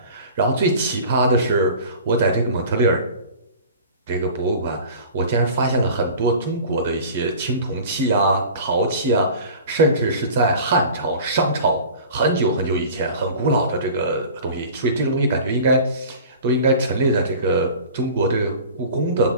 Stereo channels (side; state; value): both; inverted; correlation -0.41